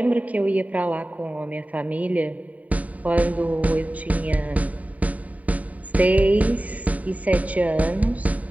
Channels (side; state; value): left; late; 0.070 ms